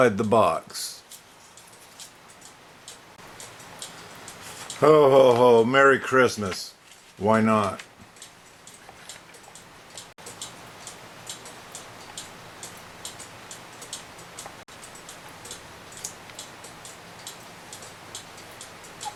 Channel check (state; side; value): identical; both; correlation 1.00